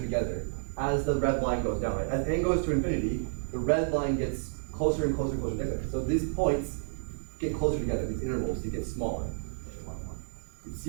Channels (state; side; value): silent; left; 57 dB below the other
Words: together as the red line goes down, right? As n goes to infinity, the red line gets closer and closer and closer together. So these points get closer together, these intervals, they get smaller.